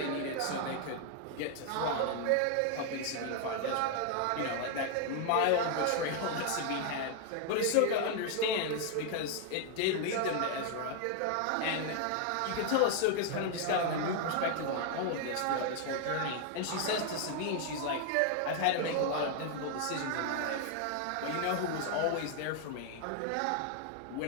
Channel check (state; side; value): different; both; correlation 0.00